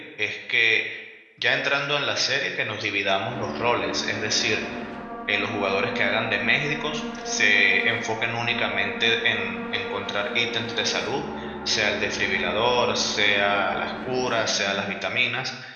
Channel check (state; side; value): identical; both; correlation 1.00